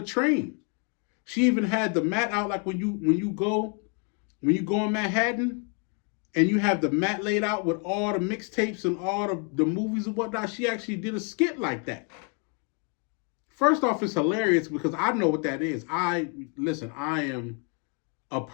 train. She even had the mat out, like when you go in Manhattan and you have the mat laid out with all the mixtapes and all the movies and whatnot. She actually did a skit like that. First off, it's hilarious because I know what that is. I am a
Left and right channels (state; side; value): quieter; right; 36.5 dB